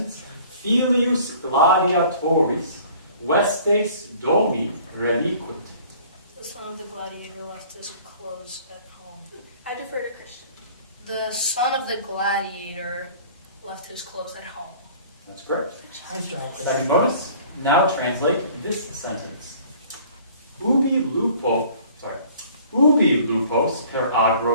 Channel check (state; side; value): inverted; both; correlation -0.51